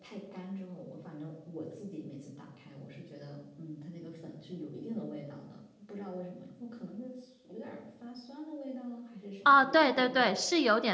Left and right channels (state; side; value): identical; both; correlation 1.00